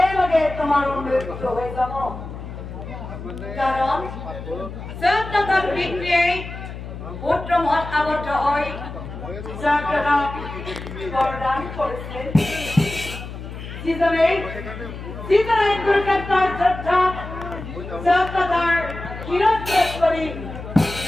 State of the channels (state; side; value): noise; left; hum, 10 dB below the sound